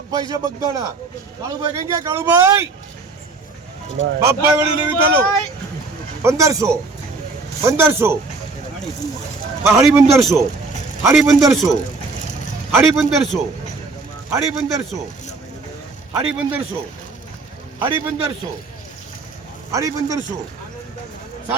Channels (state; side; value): quieter; left; 3.7 dB